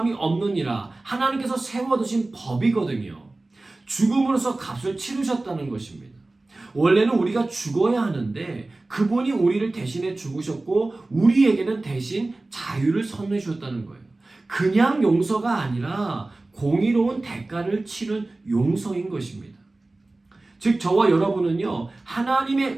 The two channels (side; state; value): left; quieter; 3.0 dB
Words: 없느니라 하나님께서 세워두신 법이거든요. 죽음으로써 값을 치르셨다는 것입니다. 원래는 우리가 죽어야 하는데 그분이 우리를 대신해 죽으셨고 우리에게는 대신 자유를 선물해 주셨다는 거예요. 그냥 용서가 아니라 공의로운 대가를 치른 용서인 것입니다. 즉 저와 여러분은요, 하나님의